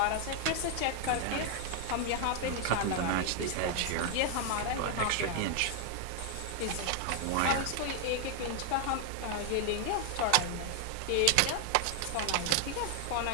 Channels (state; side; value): different; both; correlation 0.00